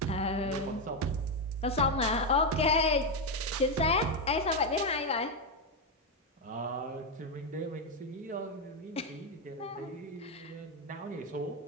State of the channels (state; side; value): normal; both; correlation 0.06